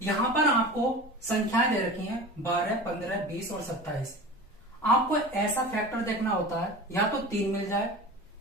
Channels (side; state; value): both; normal; correlation 0.34